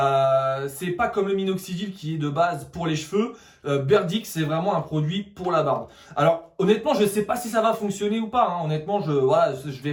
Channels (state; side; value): identical; both; correlation 1.00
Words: C'est pas comme le minoxidil qui est de base pour les cheveux. Berdix, c'est vraiment un produit pour la barbe. Alors honnêtement, je sais pas si ça va fonctionner ou pas. Hein. Honnêtement, je vais